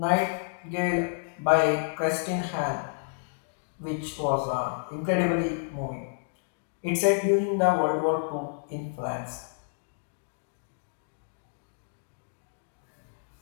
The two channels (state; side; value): silent; right; digital silence